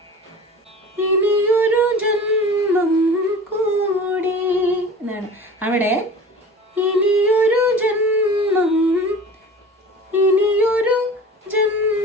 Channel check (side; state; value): both; normal; correlation 0.38